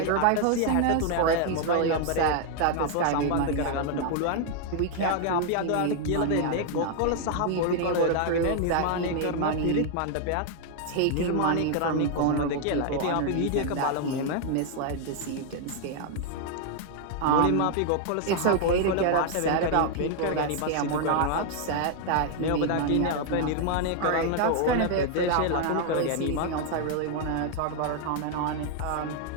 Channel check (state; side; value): different; both; correlation 0.00